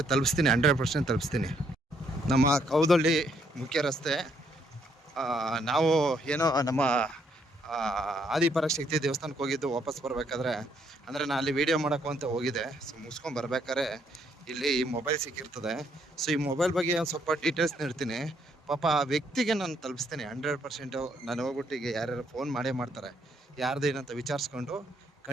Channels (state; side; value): normal; both; correlation 0.71